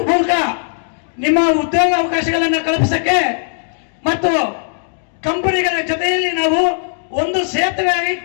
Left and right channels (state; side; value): silent; right; digital silence